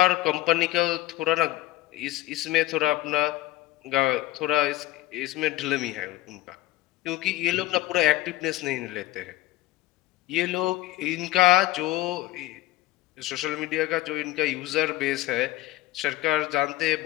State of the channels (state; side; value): quieter; right; 16.6 dB